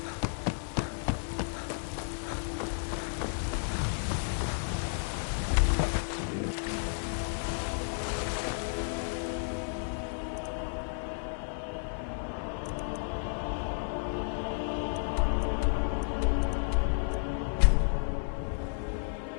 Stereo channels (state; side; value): silent; right; 56 dB below the other